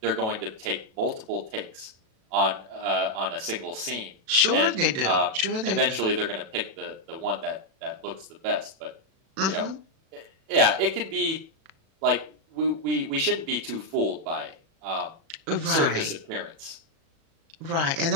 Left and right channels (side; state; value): left; late; 37 ms